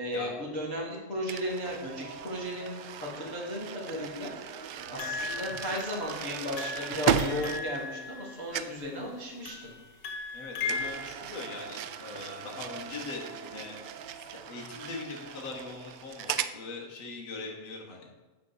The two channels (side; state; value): right; late; 6.9 ms